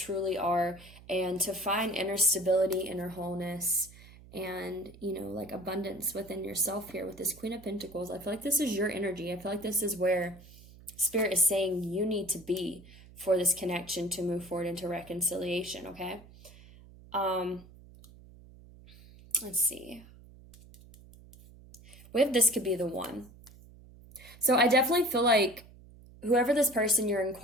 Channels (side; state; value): right; noise; hum, 21 dB below the sound